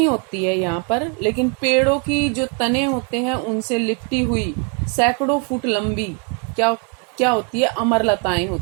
होती है यहाँ पर, लेकिन पेड़ों की जो तने होते हैं उनसे लिपटी हुई सैकड़ों फुट लंबी क्या होती है? अमरलताएं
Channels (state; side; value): quieter; left; 36.7 dB